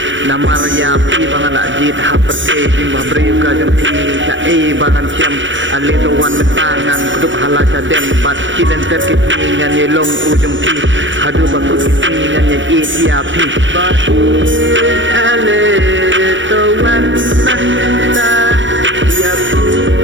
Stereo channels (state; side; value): late; left; 0.55 ms